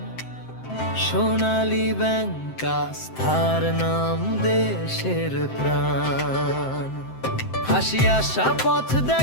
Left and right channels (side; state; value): right; late; 7.7 ms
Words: সোনালী ব্যাংক, আস্থার নাম দেশের প্রাণ। হাসি আশা পথ